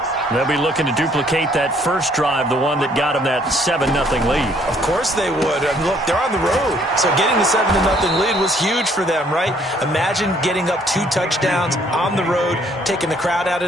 They'll be looking to duplicate that first drive, the one that got them that 7-0 lead. Of course they would. I mean, look, they're on the road. So getting the 7-0 lead was huge for them, right? Imagine getting up 2 touchdowns on the road, taking the crowd out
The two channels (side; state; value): both; normal; correlation 0.64